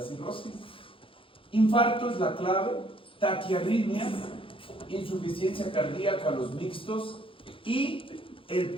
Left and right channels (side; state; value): right; late; 0.26 ms